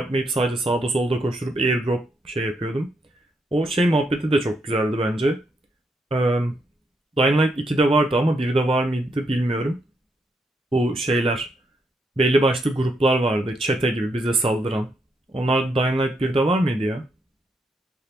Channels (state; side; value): normal; both; correlation 0.78